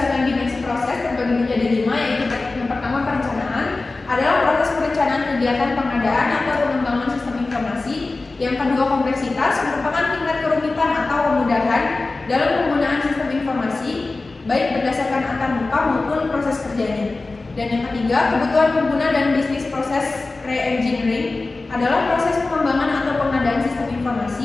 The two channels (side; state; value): right; quieter; 3.4 dB